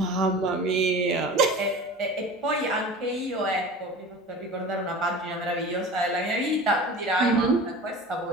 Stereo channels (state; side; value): normal; both; correlation 0.37